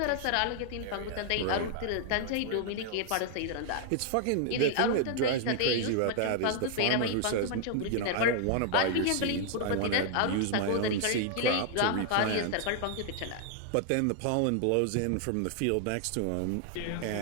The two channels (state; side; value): different; both; correlation 0.00